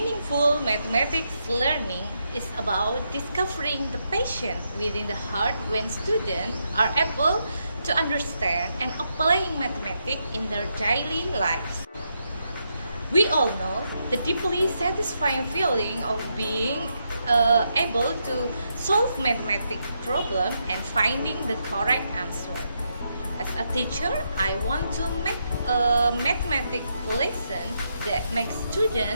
mathematics learning is about discovering the passion within the heart when students are able to understand and applying mathematics in their daily lives. We all know the deeply satisfying feeling of being able to solve mathematics problem and finding the correct answer. As a teacher, I want to make a mathematics lesson that makes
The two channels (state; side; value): inverted; both; correlation -0.81